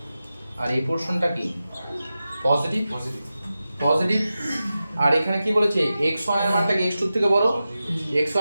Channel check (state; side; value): inverted; both; correlation -0.93